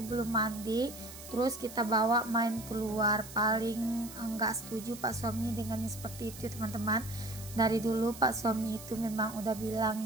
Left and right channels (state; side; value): noise; right; hiss, 14 dB below the sound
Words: belum mandi terus kita bawa main keluar. Paling enggak setuju pak suami dengan seperti itu ya teman-teman. Dari dulu pak suami itu memang udah